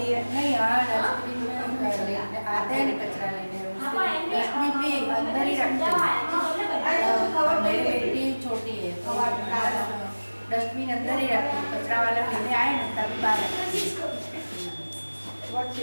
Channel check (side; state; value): both; inverted; correlation -1.00